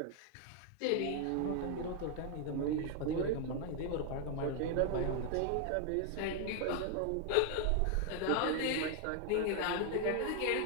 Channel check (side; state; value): both; different; correlation 0.00